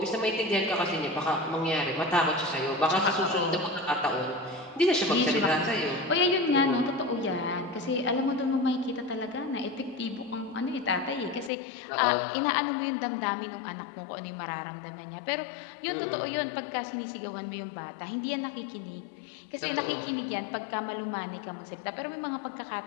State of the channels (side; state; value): right; drops out; at 11.5 s